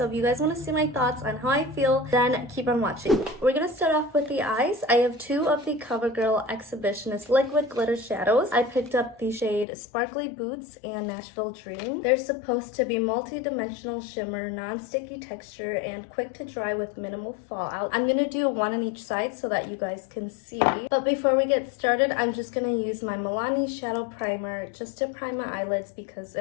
if you guys want to see my thoughts on how I feel, then keep on watching. We're going to start off with the eyes. I have two of the CoverGirl Exhibitionist Liquid Glitter Shadows. I picked up the shade Sparkly Boots and Nashville Dream. They're supposed to be multi-dimensional shimmer, non-sticky texture, and quick to dry with minimal fallout. I'm gonna do one on each side so that you guys can see. But before we get started, I'm just gonna use my Milani Shadow Primer just to prime my eyelids, because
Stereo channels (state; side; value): drops out; right; at 9.7 s